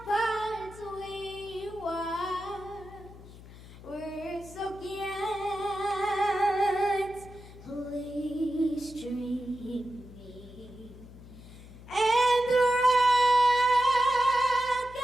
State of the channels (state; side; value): noise; left; hum, 18 dB below the sound